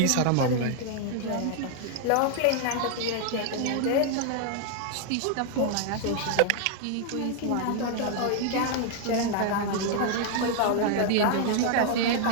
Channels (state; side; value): different; both; correlation 0.00